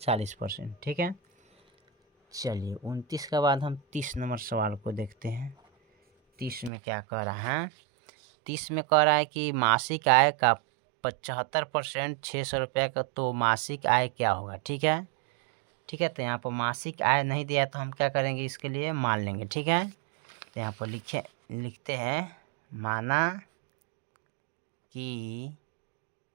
ठीक है। चलिए 29 के बाद हम 30 नंबर सवाल को देखते हैं। 30 में क्या कह रहा है, 30 में कह रहा है कि मासिक आय का 75% 600 रुपये का, तो मासिक आय क्या होगा, ठीक है। ठीक है, तो यहाँ पर मासिक आय नहीं दिया तो हम क्या करेंगे, इसके लिए मान लेंगे, ठीक है। तो यहाँ पर लिखते हैं माना कि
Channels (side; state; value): left; drops out; at 6.7 s